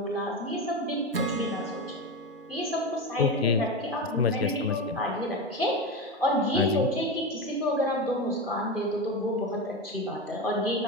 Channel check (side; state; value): both; normal; correlation 0.20